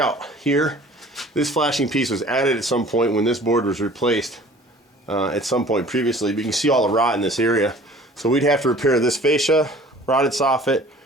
here. This flashing piece was added at some point when this board was replaced at some point previously, but you can see all the rot in this area. So we'd have to repair this fascia, rotted soffit,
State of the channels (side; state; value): both; normal; correlation 0.48